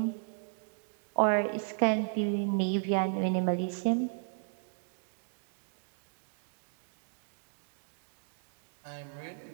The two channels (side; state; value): left; silent; digital silence